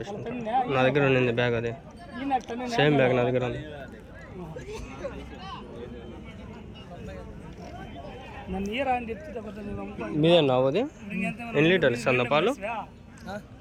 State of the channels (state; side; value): identical; both; correlation 1.00